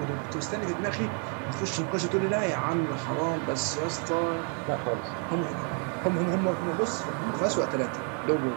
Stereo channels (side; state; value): left; quieter; 40.0 dB